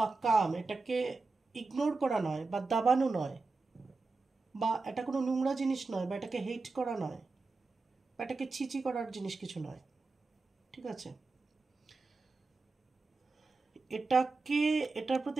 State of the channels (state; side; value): quieter; left; 3.8 dB